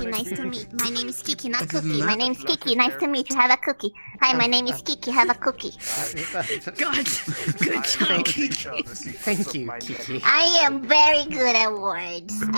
Nice to meet. My name is Kiki, not Other than Cookie. My that- name's Kiki. Nice to meet you. Have a cookie. Hi, my name is Kiki. Have a cookie. God, good job, Kiki. Thank you, Kiki. I am very good at words.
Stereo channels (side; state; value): both; inverted; correlation -1.00